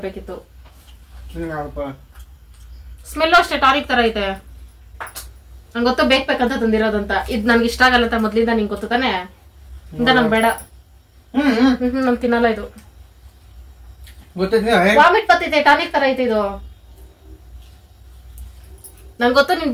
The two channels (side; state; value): both; identical; correlation 1.00